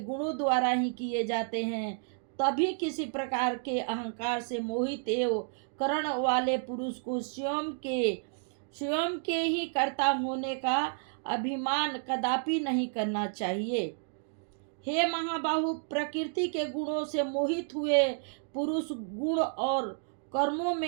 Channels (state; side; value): silent; left; digital silence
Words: द्वारा ही किए जाते हैं। तभी किसी प्रकार के अहंकार से मोहित एवं करण वाले पुरुष को स्वयं के ही कर्ता होने का अभिमान कदापि नहीं करना चाहिए। हे महाबाहु, प्रकृति के गुणों से मोहित हुए पुरुष गुण और कर्मों